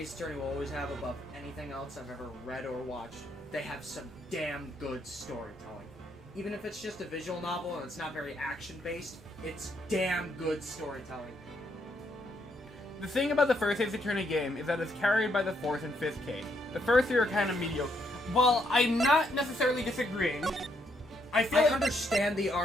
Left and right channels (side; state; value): both; normal; correlation 0.74